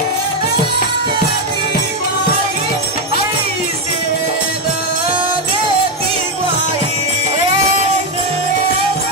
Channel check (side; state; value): both; normal; correlation 0.06